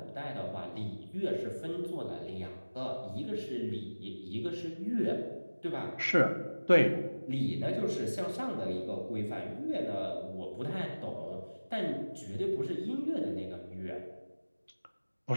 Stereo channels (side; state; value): both; inverted; correlation -1.00